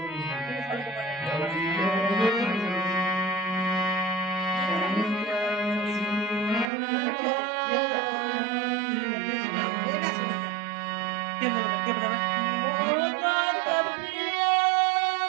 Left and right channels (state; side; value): drops out; left; at 6.7 s